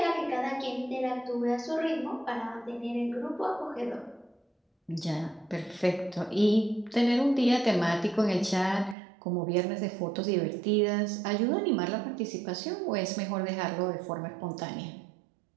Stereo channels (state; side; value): drops out; left; at 9.0 s